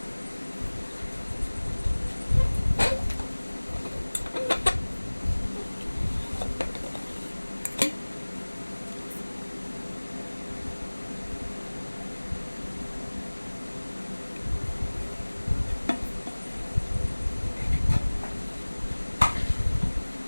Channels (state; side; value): inverted; both; correlation -1.00